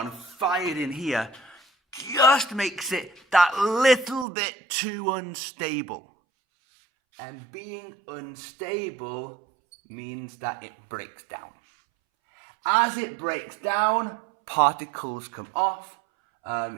fired in here just makes it that little bit too unstable. And being unstable means that it breaks down. As it breaks down, particles come off.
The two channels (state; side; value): drops out; left; at 4.2 s